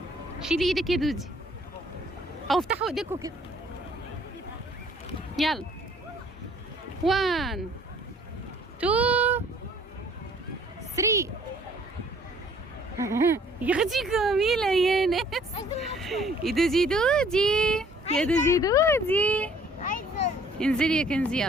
شيلي ايدك يا دودي، او افتحوا ايديكوا كده. يلا 1 2 3. يا اختي جميلة يا ناس. يا دودي دودي، يا دودي دودي، انزلي يا كنزي.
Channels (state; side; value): normal; both; correlation 0.58